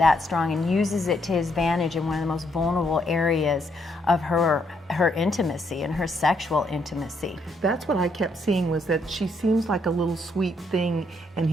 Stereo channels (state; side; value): normal; both; correlation 0.73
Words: strong and uses it to his advantage in one of the most vulnerable areas of her intimacy and her sexual intimacy. That's what I kept seeing, was that she seems like a little sweet thing, and